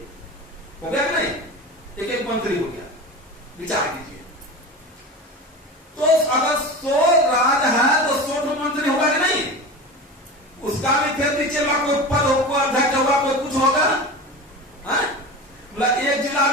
हो गया कि नहीं? एक एक मंत्री हो गया। विचार कीजिए,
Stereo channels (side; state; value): both; normal; correlation 0.30